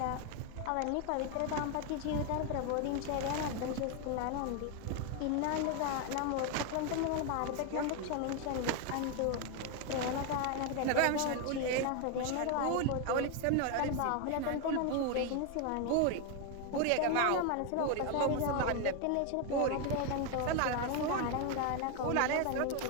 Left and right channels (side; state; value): both; different; correlation 0.01